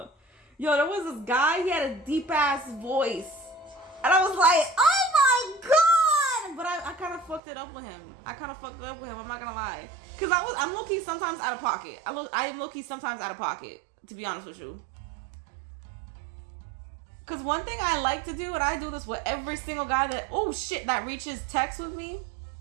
Yo, there was this guy, he had a deep ass voice. And I was like, oh my god! But I kind of fucked it up with him. I'm not gonna lie. Because I'm low-key sometimes out of pocket. I am low-key sometimes out of pocket, to be honest with you. Cause one thing I like to do, and I do this with every single guy that reaches text with me.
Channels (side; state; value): left; drops out; at 7.4 s